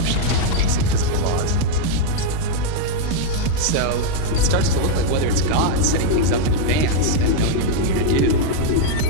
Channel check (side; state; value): both; different; correlation 0.00